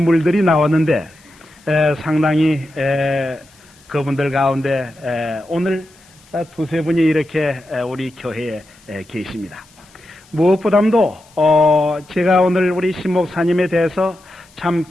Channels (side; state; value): left; noise; hiss, 28 dB below the sound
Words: 나왔는데 상당히 그분들 가운데 오늘 두세 분이 이렇게 우리 교회에 계십니다. 무엇보다도 제가 오늘 우리 신 목사님에 대해서 참